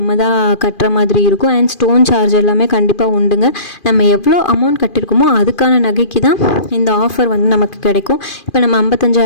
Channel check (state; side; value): late; right; 2.4 ms